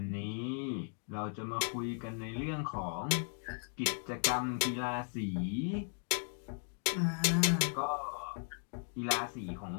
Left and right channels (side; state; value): right; silent; 53 dB below the other